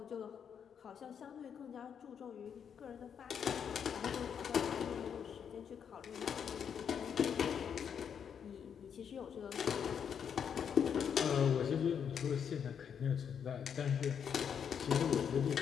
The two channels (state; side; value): quieter; right; 7.7 dB